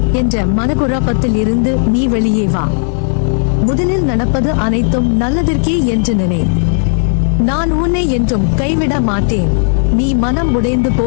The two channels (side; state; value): right; silent; digital silence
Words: என்ற மனக்குழப்பத்தில் இருந்து நீ வெளியே வா. முதலில் நடப்பது அனைத்தும் நல்லதற்கே என்று நினை. நான் உன்னை என்றும் கைவிட மாட்டேன். நீ மனம் உடைந்து